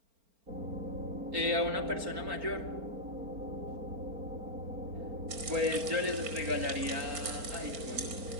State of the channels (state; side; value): late; left; 4.4 ms